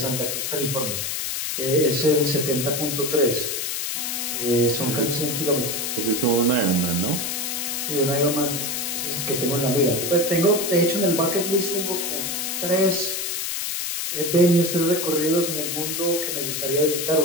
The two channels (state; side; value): noise; left; hiss, 2 dB below the sound